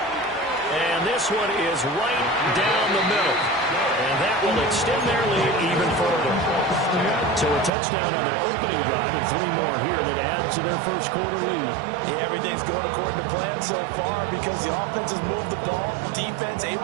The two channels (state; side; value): drops out; left; at 7.7 s